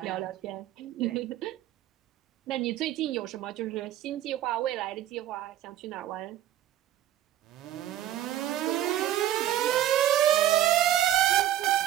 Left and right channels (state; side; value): quieter; left; 12.5 dB